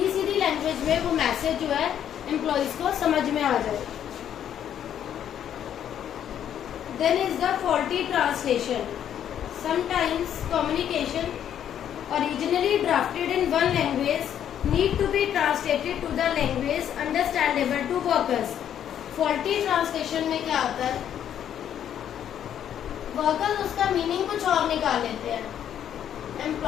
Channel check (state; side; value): quieter; right; 9.8 dB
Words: सीधी लैंग्वेज में वो मैसेज जो है एम्प्लॉयज को समझ में आ जाए। Then is the faulty translation. Sometimes communication originally drafted in one language need to be translated to the language understandable to workers. Faulty translation में क्या होता है, वर्कर्स उसका मीनिंग कुछ और निकाल लेते हैं,